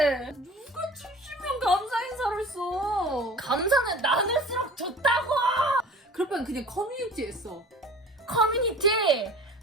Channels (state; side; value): normal; both; correlation 0.42